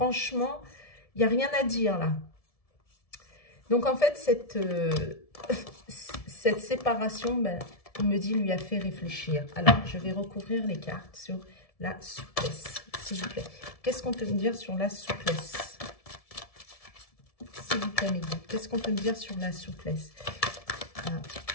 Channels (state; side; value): late; right; 1.7 ms